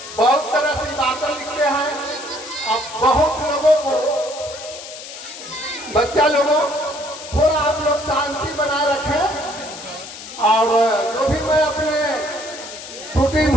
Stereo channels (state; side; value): noise; left; hiss, 12 dB below the sound